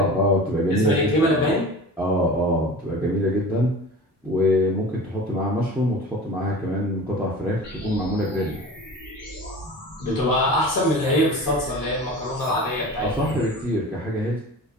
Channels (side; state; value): both; normal; correlation 0.37